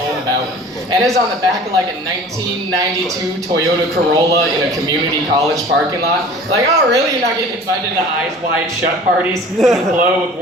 about. And it's on the back of like a 1992 Toyota Corolla in a community college parking lot. Like, oh really? You're not getting invited to Eyes Wide Shut parties? Blow with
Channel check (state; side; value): normal; both; correlation 0.44